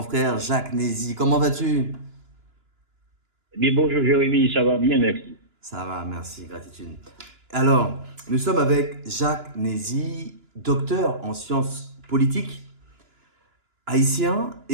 frère Jacques Nézy. Comment vas-tu? Eh bien, bonjour Jérémy, ça va bien, merci. Ça va, merci, gratitude. Alors, nous sommes avec Jacques Nézy, docteur en sciences politiques, haïtien.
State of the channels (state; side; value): late; left; 2.9 ms